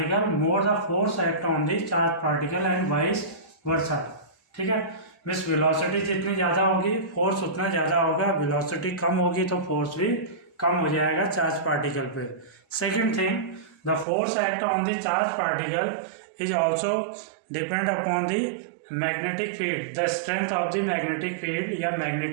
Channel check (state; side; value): drops out; left; at 14.1 s